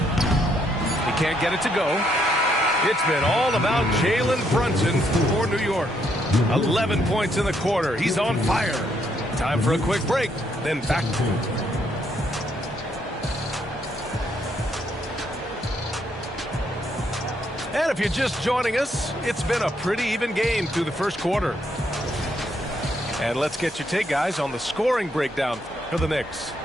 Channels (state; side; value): normal; both; correlation 0.73